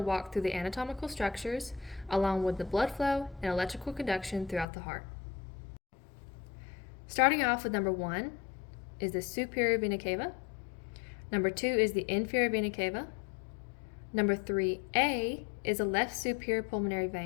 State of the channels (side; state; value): right; drops out; at 4.7 s